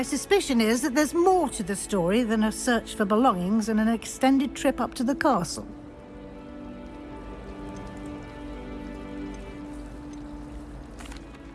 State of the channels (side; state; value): both; identical; correlation 1.00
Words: suspicion is that there's more to the story than a search for belongings and an extended trip up to the castle.